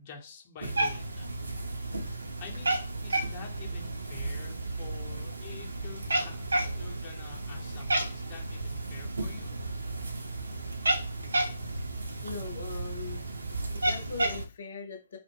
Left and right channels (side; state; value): both; inverted; correlation -0.85